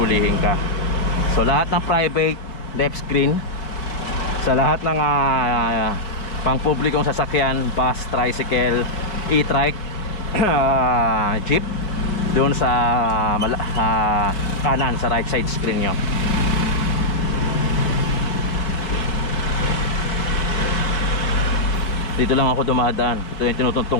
ka. So lahat ng private, left screen. Sa lahat ng pang publikong sasakyan, bus, tricycle, e-trike, jeep, doon sa kanan, sa right side screen nyo. Dito lang ako dumadaan. Ito yung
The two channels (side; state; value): right; late; 4.9 ms